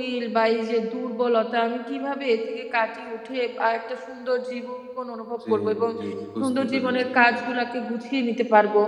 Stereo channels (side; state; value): both; identical; correlation 1.00